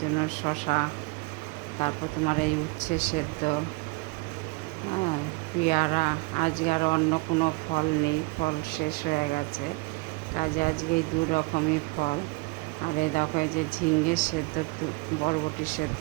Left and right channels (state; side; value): quieter; left; 26.9 dB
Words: শসা, তারপর তোমার এই উচ্ছে সেদ্ধ, হ্যাঁ, পেয়ারা। আজকে আর অন্য কোনো ফল নেই, ফল শেষ হয়ে গেছে, কাজে আজকে এই দু রকমই ফল। আর এই দেখো, এই যে ঝিঙ্গে সেদ্ধ, বরবটি সেদ্ধ